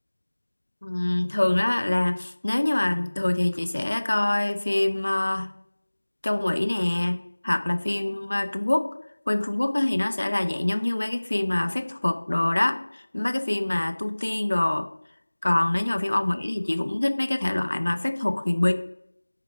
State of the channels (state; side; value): inverted; both; correlation -1.00